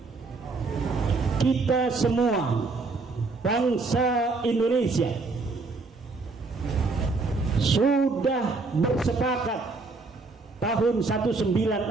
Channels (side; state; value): left; quieter; 3.9 dB